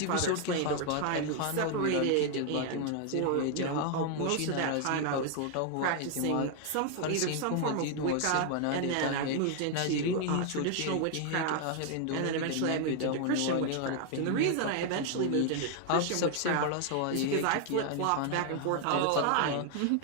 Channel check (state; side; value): different; both; correlation 0.00